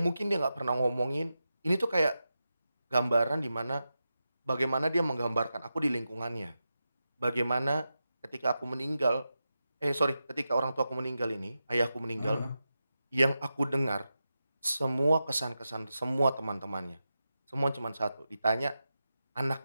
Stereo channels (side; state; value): both; inverted; correlation -0.90